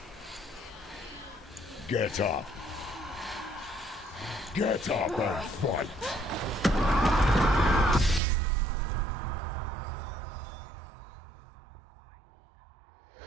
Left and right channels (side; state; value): left; drops out; at 8.2 s